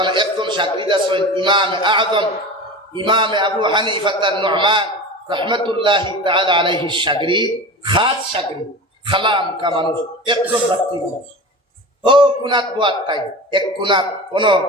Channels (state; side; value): normal; both; correlation 0.31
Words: একজন সাগরিদ আছেন, ইমাম আযম ইমাম আবু হানিফা নু'মান রাহমাতুল্লাহি তাআলা আলাইহি সাগরিদ, খাস সাগরিদ, খালাম কা মানুষ, একজন ব্যক্তি মানুষ। ও কুনাত বুয়াত তাই এক কুনাত কোন